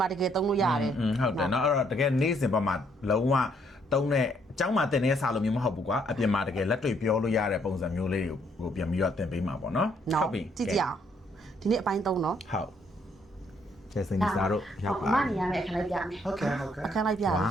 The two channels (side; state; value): both; normal; correlation 0.69